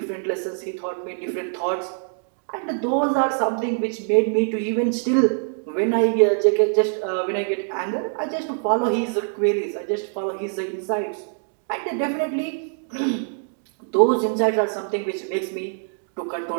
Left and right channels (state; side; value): silent; left; 63 dB below the other